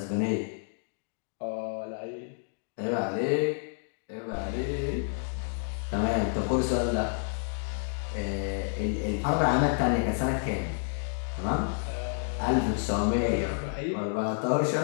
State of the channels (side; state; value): right; silent; digital silence